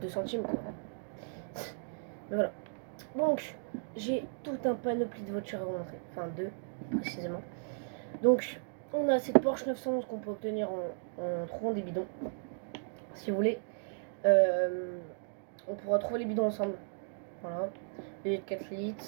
2 centimes quoi. Mais voilà. Donc, j'ai tout un panoplie de voitures à vous montrer. Enfin, deux précisément. Donc, on a cette Porsche 911 qu'on peut obtenir en trouvant des bidons. Si vous voulez, on pourra trouver les bidons ensemble. Voilà. Les 4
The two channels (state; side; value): silent; left; digital silence